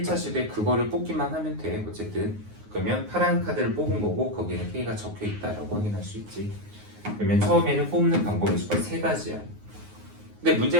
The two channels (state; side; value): late; left; 9.6 ms